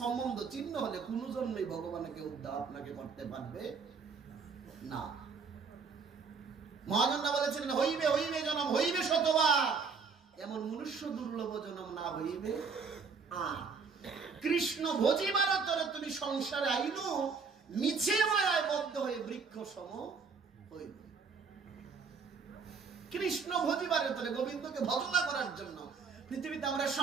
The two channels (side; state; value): left; quieter; 5.3 dB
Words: চিহ্ন হলে কোনো জন্মেই ভগবানকে উদ্ধার আপনাকে করতে পারবে না। মহাজনরা বলেছিলেন, হইবে হইবে জনম, হইবে শতবার, এমন মনুষ্য দুর্লভ জনম না হইবে আর। কৃষ্ণ ভজিবার তরে তুমি সংসারে আইনু, মিছে মায়ায় বদ্ধ হয়ে বৃক্ষ সম হইবে। কৃষ্ণ ভজিবারের তরে, গোবিন্দকে ভজনা করার জন্য পৃথিবীতে আমরা